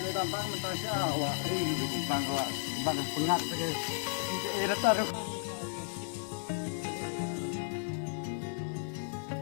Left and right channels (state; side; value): silent; right; 55 dB below the other